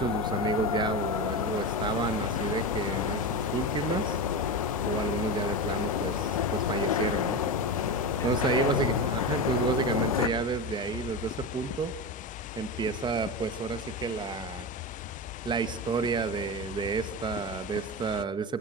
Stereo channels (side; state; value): both; normal; correlation 0.20